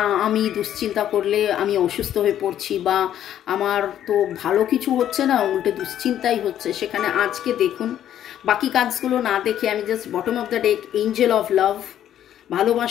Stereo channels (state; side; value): quieter; right; 11.0 dB